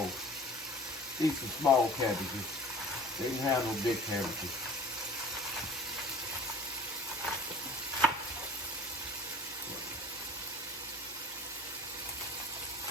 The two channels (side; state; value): both; normal; correlation 0.45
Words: These some small cabbages. They didn't have no big cabbages.